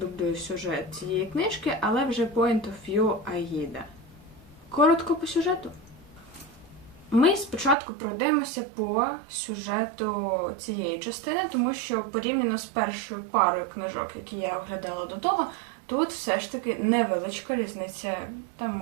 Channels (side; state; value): left; drops out; at 7.8 s